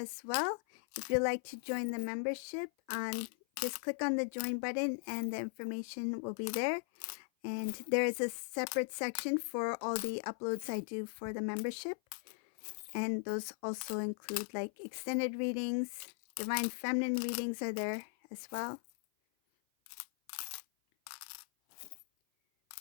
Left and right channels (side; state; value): right; silent; 52 dB below the other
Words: well. If you'd like to join the membership, just click on the join button and the information will be there. And there is a separate section for all the uploads I do for the membership. And those also include like extended readings, divine feminine readings are there as well.